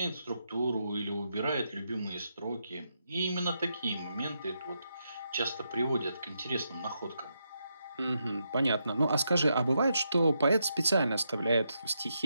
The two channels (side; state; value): both; inverted; correlation -0.82